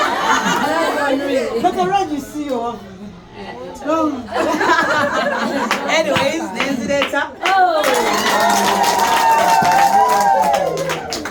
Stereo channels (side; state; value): both; identical; correlation 1.00